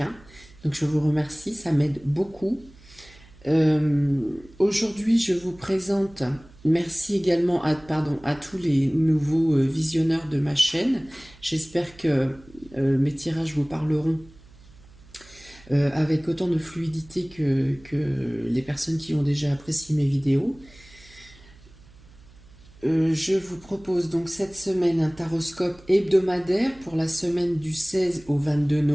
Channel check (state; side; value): noise; right; hum, 24 dB below the sound